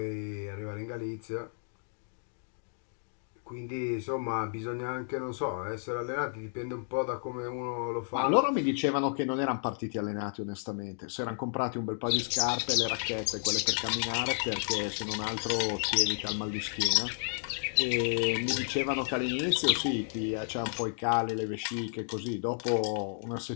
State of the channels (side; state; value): right; silent; digital silence